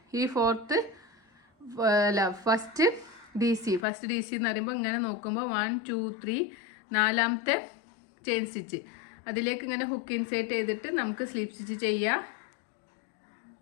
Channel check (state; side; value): drops out; right; at 3.9 s